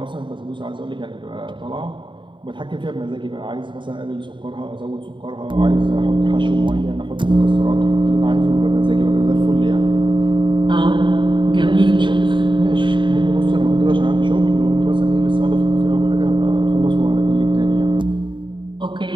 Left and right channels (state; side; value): late; left; 0.23 ms